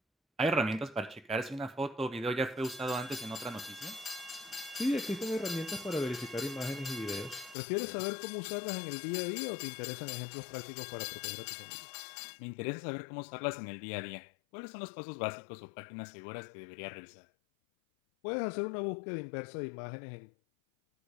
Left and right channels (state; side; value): drops out; right; at 7.6 s